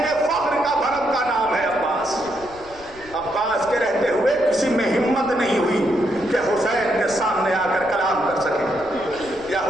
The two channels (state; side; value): noise; left; rumble, 22 dB below the sound